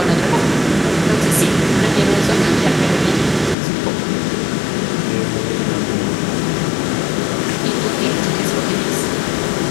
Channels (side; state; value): right; drops out; at 3.6 s